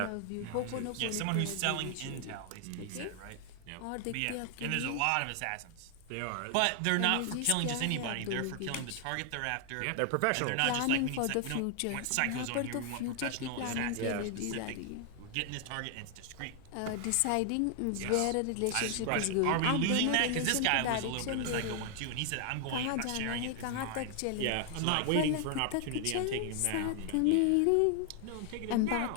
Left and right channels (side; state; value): both; different; correlation 0.00